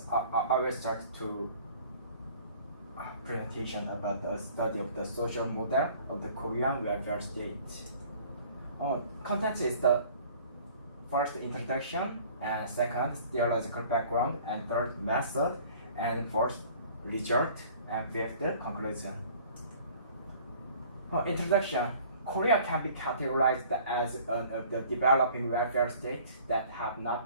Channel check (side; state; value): both; inverted; correlation -0.51